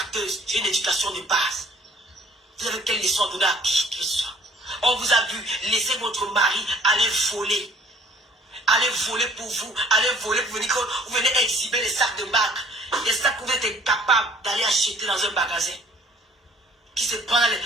J'ai une éducation de base. Vous avez quelle leçon à donner à qui que ce soit? On vous a vu laisser votre mari aller voler. Aller voler pour vous, aller voler pour venir, vous venez exhiber les sacs de bac. Les sacs que vous êtes incapable d'aller acheter dans un magasin. Qui se prend dans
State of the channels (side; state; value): both; normal; correlation 0.56